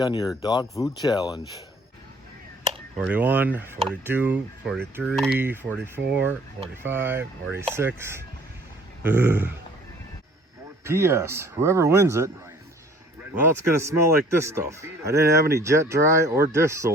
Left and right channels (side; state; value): both; normal; correlation 0.54